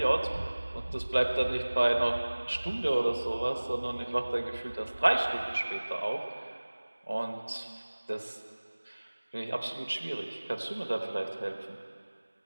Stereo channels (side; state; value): both; inverted; correlation -1.00